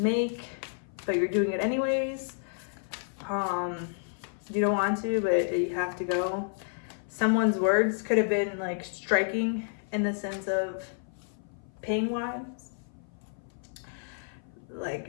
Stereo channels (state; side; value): silent; right; 55 dB below the other